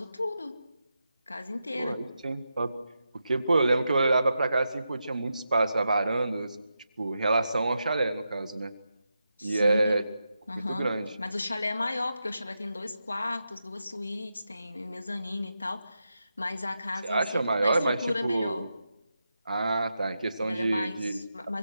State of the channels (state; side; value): inverted; both; correlation -0.87